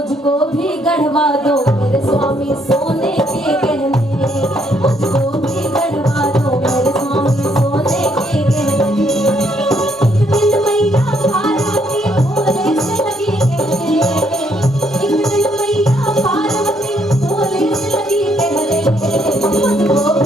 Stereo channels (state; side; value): normal; both; correlation 0.71